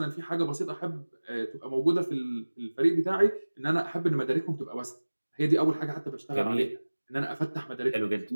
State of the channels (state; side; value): inverted; both; correlation -1.00